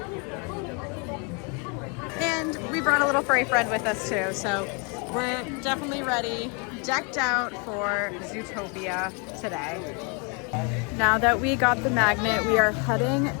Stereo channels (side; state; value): right; quieter; 34.2 dB